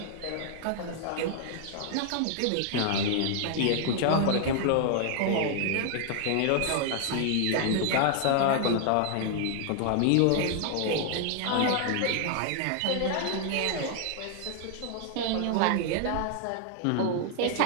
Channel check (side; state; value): both; different; correlation 0.00